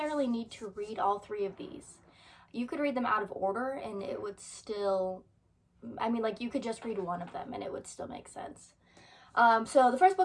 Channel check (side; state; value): both; identical; correlation 1.00